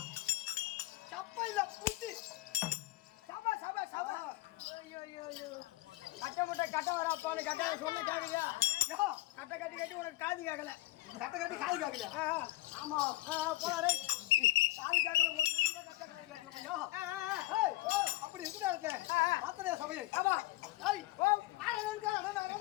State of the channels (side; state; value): right; quieter; 17.6 dB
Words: கட்ட வராப்பான்னு கட்ட சொன்ன கேக்குறியா? கட்ட கட்டி கட்டி உனக்கு காது கேட்கல. கட்ட கட்டி காது கேட்கல. ஆமா போறாரு காது கேட்கல. காது கேட்கல. அப்படி இருக்குதா இருக்கு பாத்திரையா சபையை? ஆமா.